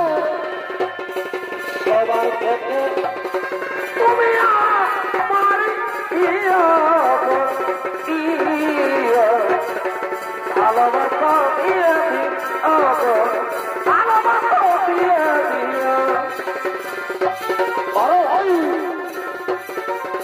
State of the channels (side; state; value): both; identical; correlation 1.00